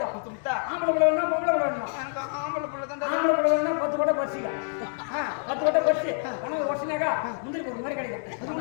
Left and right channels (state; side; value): silent; right; digital silence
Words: ஆம்பளை பிள்ளை வேணா பொம்பளை பிள்ளை வேணுமா ஆம்பளை பிள்ளை தான் 10 கொட்டை பறிச்சிக்க 10 கொட்டை பறிச்சு உனக்கு ஒட்டினாக்கா முந்திரி ஒரு மாதிரி கிடைக்கும்